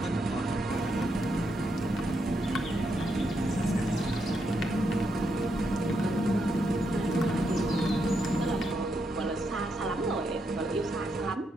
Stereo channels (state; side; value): normal; both; correlation 0.80